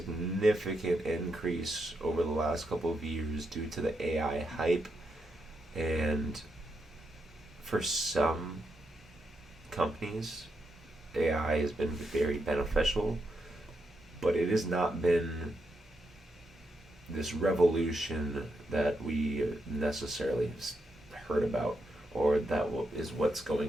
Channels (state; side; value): normal; both; correlation 0.82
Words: increase over the last couple of years due to the AI hype, and for some companies, AI has been very beneficial, but it has not been this revolution that we necessarily heard about, or that is what's